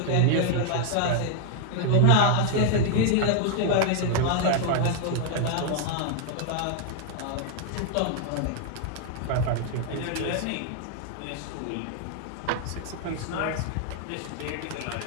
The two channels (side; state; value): both; different; correlation 0.00